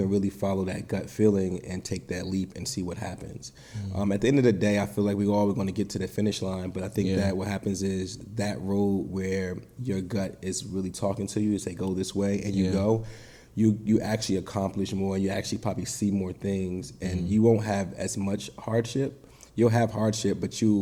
really follow that gut feeling and take that leap and see what happens. At the end of the day, I feel like we're all going to get to the finish line, but I think that what happens is that road where your gut is really talking to you, say go this way, and you go, you actually accomplish more, and you actually probably see more things, and you won't have as much hardship. You'll have hardship, but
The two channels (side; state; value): both; identical; correlation 1.00